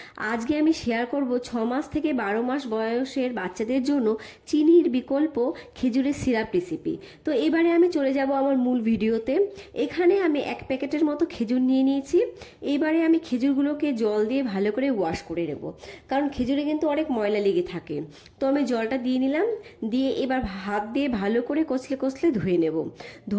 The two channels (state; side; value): identical; both; correlation 1.00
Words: আজকে আমি শেয়ার করব 6 মাস থেকে 12 মাস বয়সের বাচ্চাদের জন্য চিনির বিকল্প খেজুরের সিরাপ রেসিপি। তো এবারে আমি চলে যাব আমার মূল ভিডিওতে। এখানে আমি 1 প্যাকেটের মতো খেজুর নিয়ে নিয়েছি। এবারে আমি খেজুরগুলোকে জল দিয়ে ভালো করে ওয়াশ করে নেব, কারণ খেজুরে কিন্তু অনেক ময়লা লেগে থাকে। তো আমি জলটা দিয়ে নিলাম, দিয়ে এবার হাত দিয়ে ভালো করে কচলে কচলে ধুয়ে নেব।